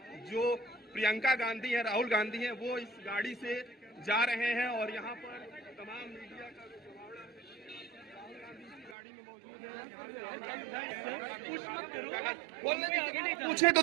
जो प्रियंका गांधी है, राहुल गांधी है, वो इस गाड़ी से जा रहे हैं। और यहाँ पर तमाम मीडिया का जो जमावड़ा है, राहुल गांधी की गाड़ी में मौजूद है। पूछे तो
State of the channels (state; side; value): drops out; left; at 9.0 s